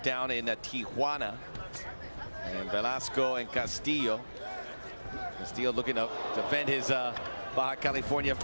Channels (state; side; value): inverted; both; correlation -1.00